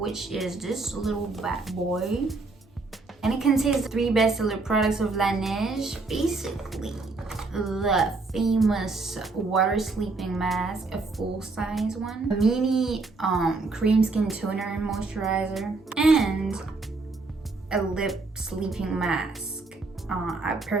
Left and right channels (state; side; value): quieter; left; 3.7 dB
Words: is this little bad boy. And it contains 3 bestseller products of Laneige. Basically, the famous water sleeping mask, a full-size one, a mini cream skin toner moisturizer, and a lip sleeping mask. I